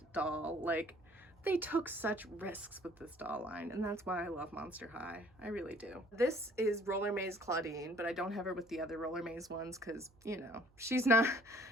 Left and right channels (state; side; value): noise; right; hum, 29 dB below the sound